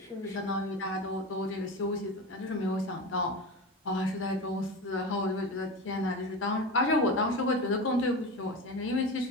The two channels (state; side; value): normal; both; correlation 0.26